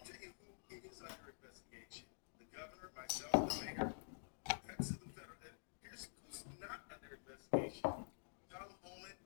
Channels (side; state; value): right; silent; digital silence